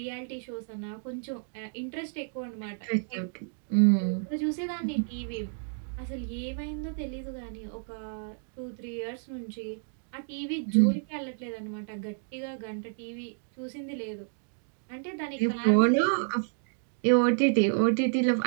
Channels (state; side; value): silent; left; digital silence